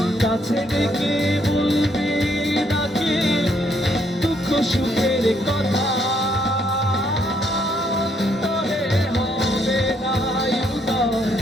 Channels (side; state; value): both; normal; correlation 0.71